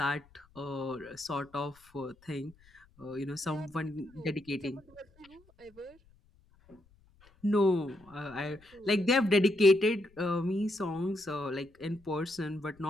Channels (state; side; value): noise; left; rumble, 29 dB below the sound